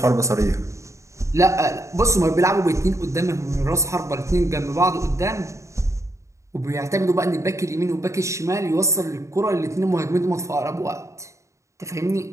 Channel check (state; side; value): late; left; 0.14 ms